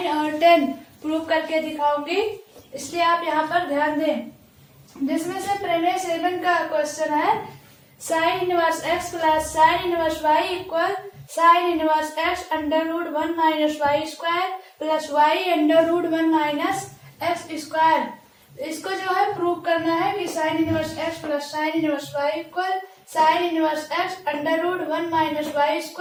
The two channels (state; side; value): identical; both; correlation 1.00